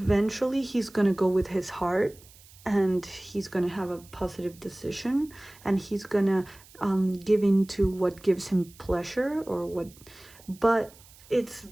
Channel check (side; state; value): right; noise; hiss, 24 dB below the sound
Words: he's gonna go with his heart, and he's gonna have a positive decision, and he's gonna give in to what gives him pleasure, or what, but it's